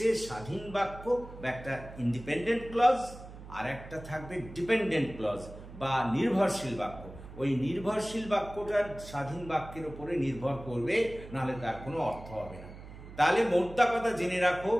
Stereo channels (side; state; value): right; noise; hum, 15 dB below the sound